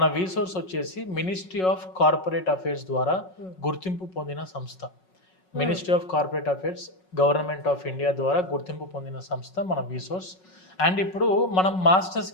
వీసోర్స్ వచ్చేసి మినిస్ట్రీ ఆఫ్ కార్పొరేట్ అఫైర్స్ ద్వారా గుర్తింపు పొందిన సంస్థ. Ministry of corporate affairs government of India ద్వారా గుర్తింపు పొందిన సంస్థ మన వీసోర్స్. అండ్ ఇప్పుడు మనం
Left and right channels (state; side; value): late; right; 5.4 ms